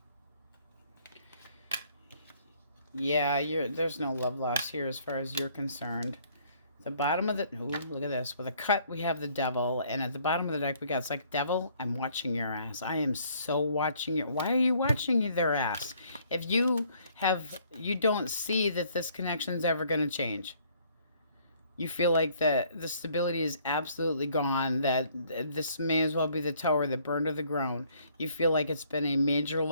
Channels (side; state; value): both; inverted; correlation -0.63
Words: Yeah, there's no love lost here as far as you're concerned. The bottom of the... Ooh, look at this. With a cut, we have the Devil. And at the bottom of the deck, we got... It's like, Devil, I'm watching your ass. I am so watching your... Why are you watching their ass? If you don't see that this connection's ever going to change. You feel like the stability is absolutely gone. That this may as well be the tower that burned to the ground. You feel like it's been a major